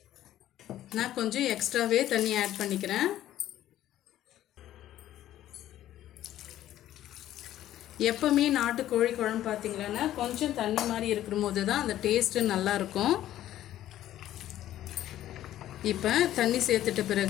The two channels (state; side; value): quieter; right; 12.9 dB